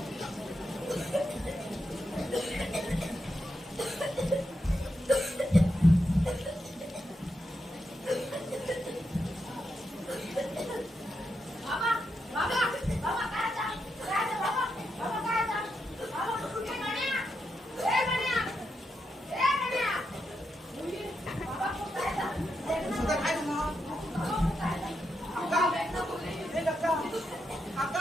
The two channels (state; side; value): normal; both; correlation 0.84